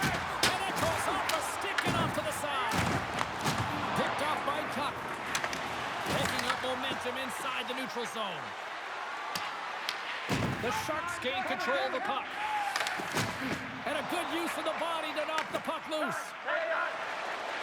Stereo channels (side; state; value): both; identical; correlation 1.00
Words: it goes off the stick and off to the side. Picked off by Tuck. Picking up momentum inside the neutral zone. The Sharks gain control of the puck. And a good use of the body to knock the puck loose.